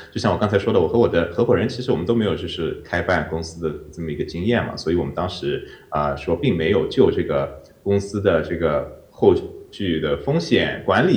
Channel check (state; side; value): identical; both; correlation 1.00